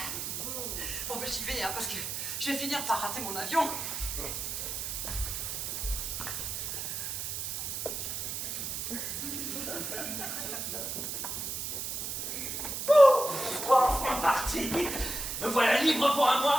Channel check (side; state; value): right; noise; hiss, 4 dB below the sound